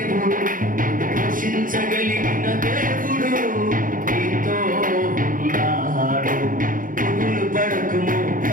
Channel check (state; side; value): late; left; 0.40 ms